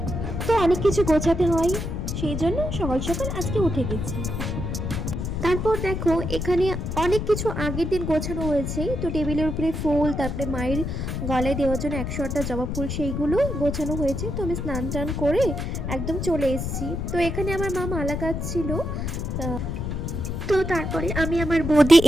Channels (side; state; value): left; noise; rumble, 3 dB below the sound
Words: কিছু গোছাতে হয়, সেই জন্য সকাল সকাল আজকে উঠে গেছি। তারপর দেখো এখানে অনেক কিছু আগের দিন গোছানো হয়েছে। তো টেবিলের উপরে ফুল, তারপরে মায়ের গলায় দেওয়ার জন্য 108টা জবা ফুল, সেইগুলো গোছানো হয়েছে। তো আমি স্নান টান করে একদম চলে এসেছি। তো এখানে আমার মা মালা কাটছিল। তো তারপরে আমি আমার বৌদি